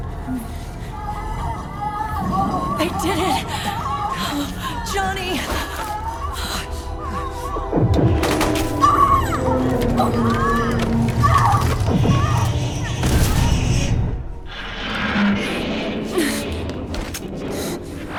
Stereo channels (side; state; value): both; identical; correlation 1.00